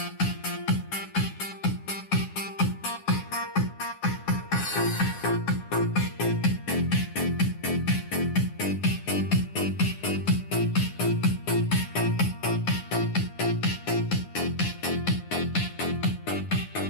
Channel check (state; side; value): late; right; 9.7 ms